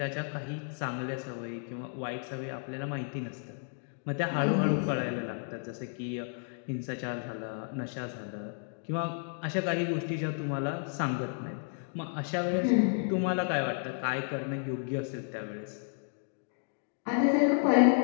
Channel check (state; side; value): silent; right; 56 dB below the other